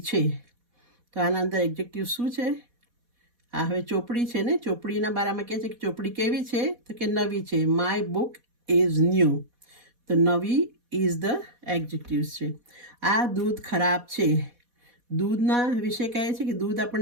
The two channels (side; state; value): left; late; 4.1 ms